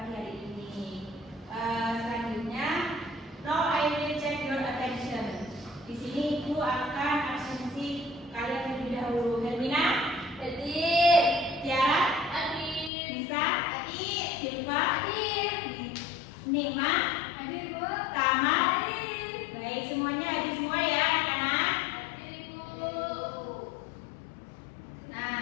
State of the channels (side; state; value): right; drops out; at 12.9 s